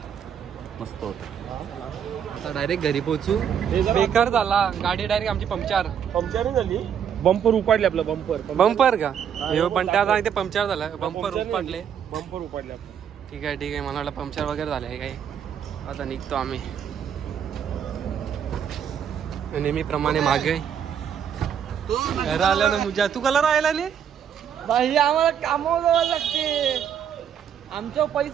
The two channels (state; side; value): quieter; left; 8.4 dB